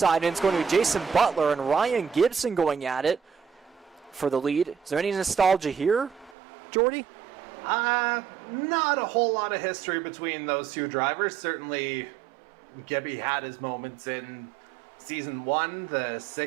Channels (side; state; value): left; drops out; at 6.4 s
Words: and it's going to be Jason Butler and Ryan Gibson going at it for the lead. Is there any nostalgia here, Jordy? Not a whole lot of history between those two drivers. Certainly, Gibby had his moments in Season 1, the